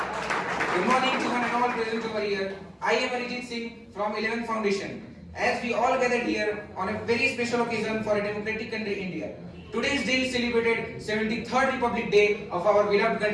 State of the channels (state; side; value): identical; both; correlation 1.00